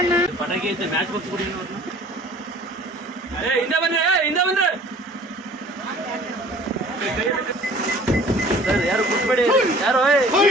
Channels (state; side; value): normal; both; correlation 0.49